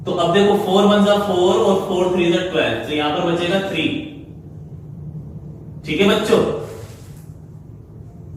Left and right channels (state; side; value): identical; both; correlation 1.00